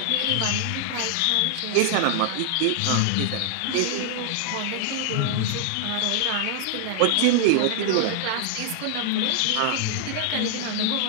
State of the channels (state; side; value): different; both; correlation 0.00